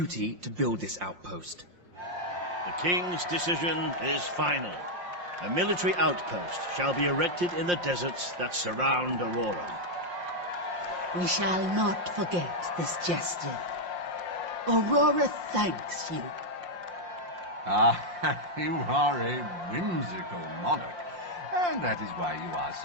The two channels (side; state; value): left; late; 5.7 ms